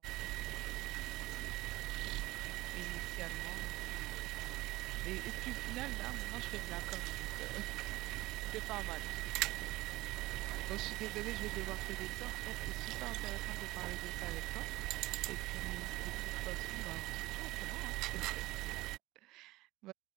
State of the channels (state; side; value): quieter; left; 18.7 dB